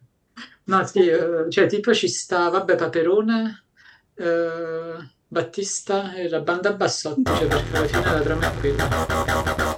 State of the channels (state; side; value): identical; both; correlation 1.00